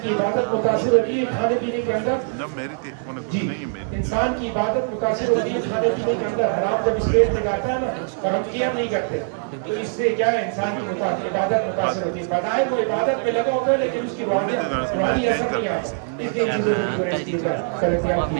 کی عبادت متاثر ہوتی ہے کھانے پینے کے اندر جی, انسان کی عبادت متاثر ہوتی ہے کھانے پینے کے اندر. حرام جب اس پیٹ میں جاتا ہے نا اور ہم کیئر نہیں کرتے تو اس سے کیا ہے, انسان کی عبادت متاثر ہوتی ہے. بظاہر وہ عبادت میں لگا ہوتا ہے لیکن اس کی روحانی اثر نہیں آتا. اس لیے چیزوں کو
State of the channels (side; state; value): left; silent; 56 dB below the other